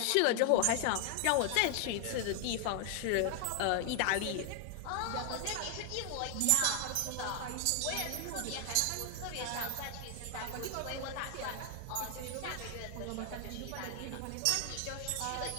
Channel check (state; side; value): different; both; correlation 0.00